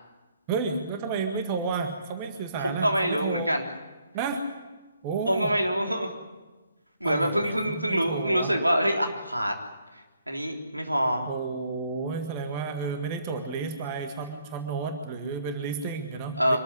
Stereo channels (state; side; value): inverted; both; correlation -0.71